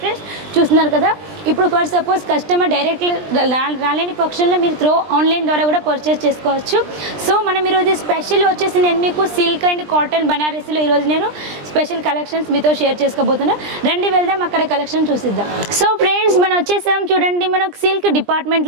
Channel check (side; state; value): left; late; 20 ms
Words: ఫ్రెండ్స్. చూస్తున్నారు కదా. ఇప్పుడు ఫర్ సపోజ్ కస్టమర్ డైరెక్ట్లీ రాలేని పక్షంలో మీరు త్రూ ఆన్లైన్ ద్వారా కూడా పర్చేస్ చేసుకోవచ్చు. సో మనం ఈరోజు స్పెషల్ వచ్చేసి నేను మీకు సిల్క్ అండ్ కాటన్ బనారసీలో ఈరోజు నేను స్పెషల్ కలెక్షన్స్ మీతో షేర్ చేసుకోబోతున్నాను. రండి వెళ్దాం అక్కడ కలెక్షన్ చూసిద్దాం. సో ఫ్రెండ్స్ మనం వచ్చేసాం చూడండి మనకు సిల్క్